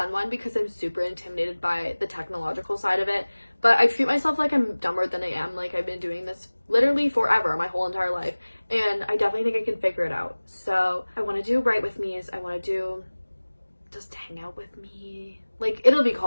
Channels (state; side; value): inverted; both; correlation -1.00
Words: one because I'm super intimidated by the technological side of it, but I treat myself like I'm dumber than I am. Like, I've been doing this literally forever, my whole entire life, and I definitely think I can figure it out. So I want to do Write With Me's. I want to do just hang out with me. Like, it'll be